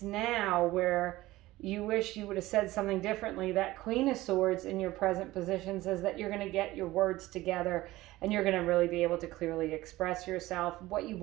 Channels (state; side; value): quieter; left; 17.6 dB